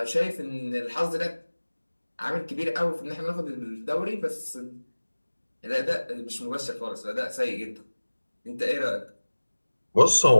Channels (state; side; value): inverted; both; correlation -1.00